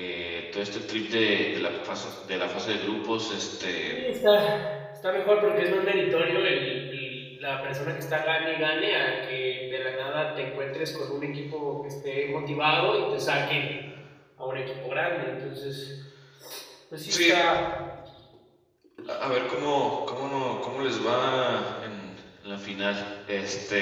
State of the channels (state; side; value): identical; both; correlation 1.00